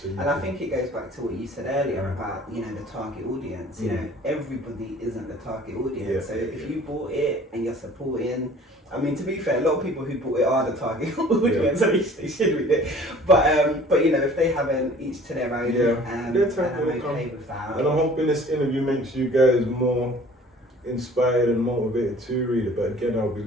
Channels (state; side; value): normal; both; correlation 0.50